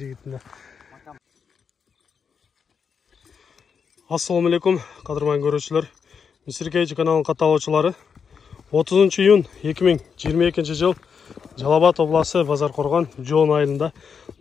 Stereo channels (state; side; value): quieter; right; 6.3 dB